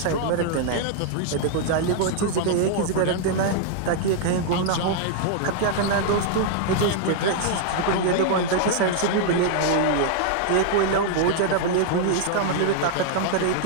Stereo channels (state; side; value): different; both; correlation 0.00